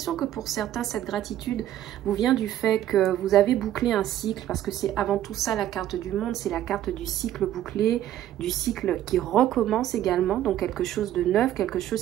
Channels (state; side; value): quieter; left; 12.2 dB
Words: que pour certains, cette gratitude vous vient du fait que vous avez bouclé un cycle parce que c'est avant tout ça la carte du monde, c'est la carte du cycle bouclé, du cycle qui recommence également. Donc, quelque chose de neuf, quelque